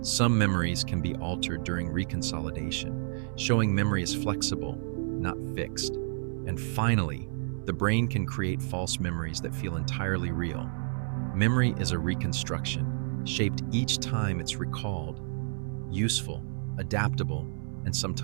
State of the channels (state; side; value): silent; left; 58 dB below the other